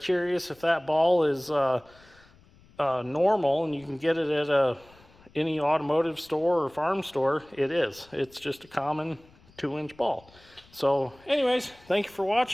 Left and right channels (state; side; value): noise; left; rumble, 28 dB below the sound